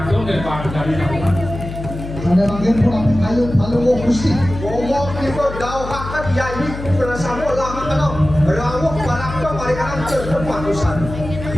dari nama ada bagian pulang kayu Palungguh Gusti ngomong kita dauhakan yayi bersama lama karena rawuk barakto marikanan cerpen matusan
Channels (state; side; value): noise; left; hum, 9 dB below the sound